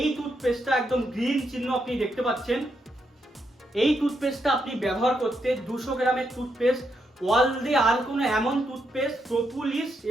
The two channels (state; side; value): normal; both; correlation 0.80